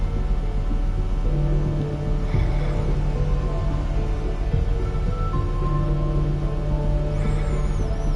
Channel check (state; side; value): identical; both; correlation 1.00